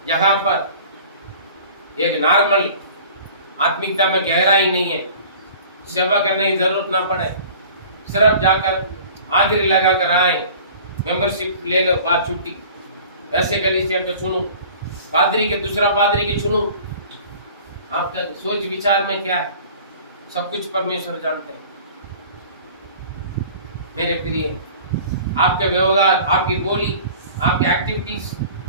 जहां पर एक नॉर्मल आत्मिकता में गहराई नहीं है, सेवा करने की जरूरत ना पड़े, सिर्फ जाकर हाजिरी लगा कर आए, मेंबरशिप ले लो, बात छुट्टी। ऐसे गली से चुनूं, पादरी के दूसरा पादरी के चुनूं। आपका सोच विचार में क्या है, सब कुछ परमेश्वर जानते हैं। मेरे प्रिय, आपके व्यवहार, आपकी बोली, आपकी एक्टिविटीज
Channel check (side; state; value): both; inverted; correlation -0.45